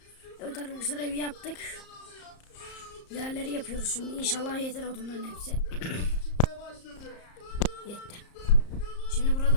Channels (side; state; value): right; late; 34 ms